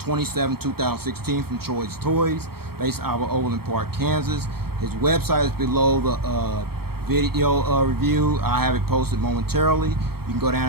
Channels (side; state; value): left; late; 0.95 ms